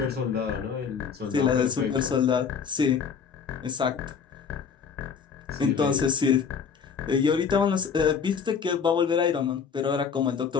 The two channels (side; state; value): right; quieter; 6.4 dB